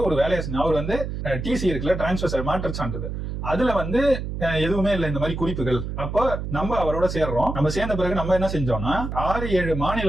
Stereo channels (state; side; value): noise; right; hum, 5 dB below the sound